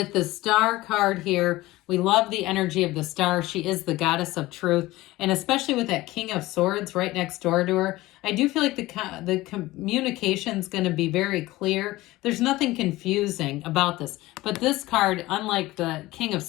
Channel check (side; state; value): right; quieter; 18.4 dB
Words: the Star card here, we love the energy of the Star. She is the goddess of truth. And especially with that King of Swords right next door to her, I do feel like the communication is going to be very clear. There's nothing confusing about this. But this card, unlike the King of